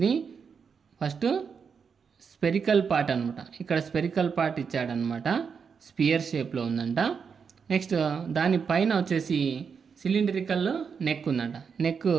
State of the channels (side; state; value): left; quieter; 6.2 dB